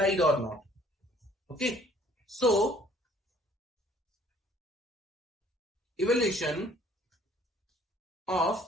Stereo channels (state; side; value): normal; both; correlation 0.58